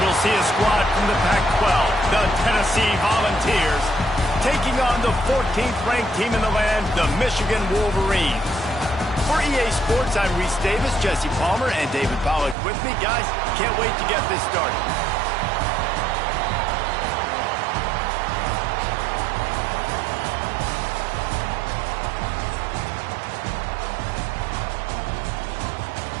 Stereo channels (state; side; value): drops out; left; at 12.6 s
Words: we'll see a squad from the Pac-12, the Tennessee Volunteers, taking on the 14th ranked team in the land, the Michigan Wolverines. For EA Sports, I'm Reese Davis, Jesse Palmer, and David Pollack with me. Guys, can't wait to get this started.